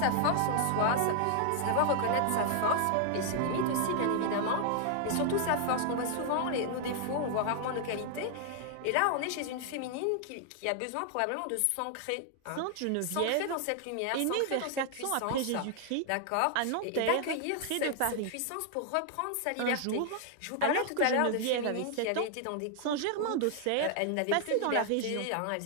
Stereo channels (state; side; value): different; both; correlation 0.00